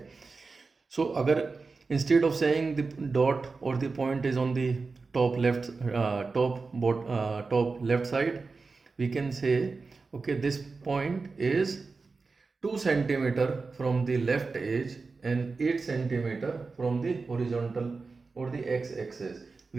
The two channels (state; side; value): quieter; left; 4.2 dB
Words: So agar instead of saying the dot or the point is on the top left top left side, we can say okay, this point is 2 centimeter from the left edge and 8 centimeter from the horizontal or the x-axis.